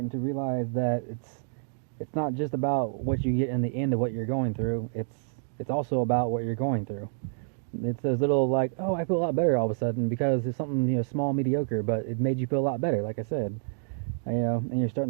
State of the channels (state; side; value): silent; left; digital silence